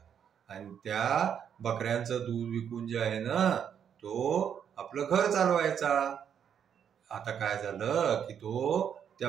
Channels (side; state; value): left; quieter; 8.3 dB